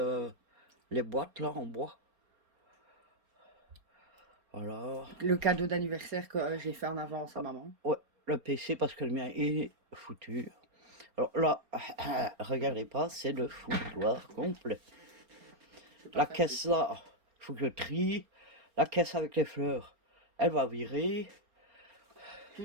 les boîtes, là, en bois. Voilà. Le cadeau d'anniversaire que j'ai fait en avance à maman. Ouais, le PC, parce que le mien est foutu. Alors là, regardez pas, c'est le foutoir complet. La caisse là, il faut que je trie. La caisse avec les fleurs, elle va virer.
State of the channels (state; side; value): late; left; 4.3 ms